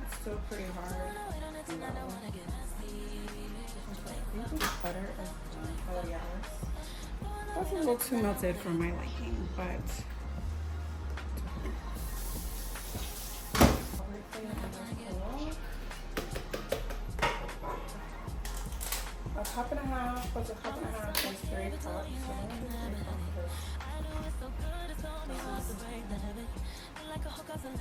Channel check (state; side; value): identical; both; correlation 1.00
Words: it's still pretty hard. Butter is oh yeah. That's a little too melted for my liking, but a cup and a half plus a cup and a half is 3 cups. So I'm gonna do 3 cups of this.